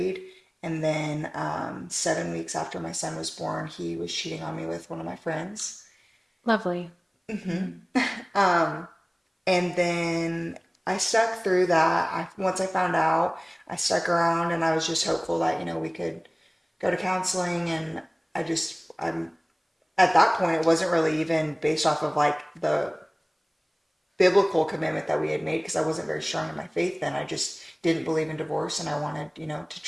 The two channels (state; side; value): identical; both; correlation 1.00